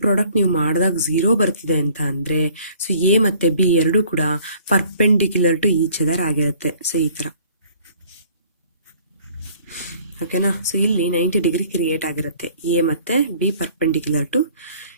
product ನೀವು ಮಾಡಿದಾಗ 0 ಬರ್ತಿದೆ ಅಂತ ಅಂದರೆ so A ಮತ್ತು B ಎರಡೂ ಕೂಡ perpendicular to each other ಆಗಿರುತ್ತೆ. ಸೊ ಈ ಥರ. ಓಕೆನಾ? ಸೊ ಇಲ್ಲಿ 90 ಡಿಗ್ರಿ ಕ್ರಿಯೇಟ್ ಆಗಿರುತ್ತೆ. ಎ ಮತ್ತು B perpendicular to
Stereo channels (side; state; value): both; inverted; correlation -0.55